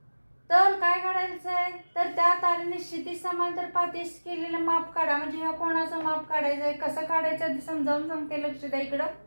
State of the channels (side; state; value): both; inverted; correlation -1.00